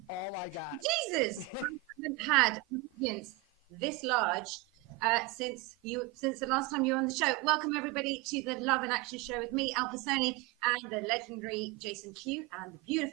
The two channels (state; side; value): quieter; left; 17.0 dB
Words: all I got. Jesus, I haven't had audience this large since the last time you were on the show. Welcome everybody to the Love and Action Show with me, Alpa Soni, and the legendary Jason Q and the